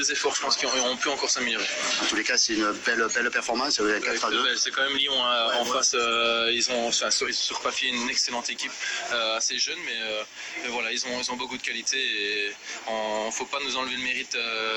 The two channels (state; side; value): identical; both; correlation 1.00